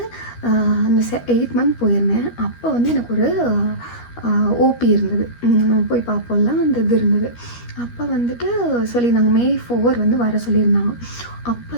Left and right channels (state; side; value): late; right; 13 ms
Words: அந்த 8 month போயிருந்தேன். அப்போ வந்து எனக்கு ஒரு ஓபி இருந்தது, போய் பார்ப்போம்ல அந்த இது இருந்தது. அப்போ வந்துட்டு சொல்லியிருந்தாங்க May 4 வந்து வர சொல்லியிருந்தாங்க. அப்போ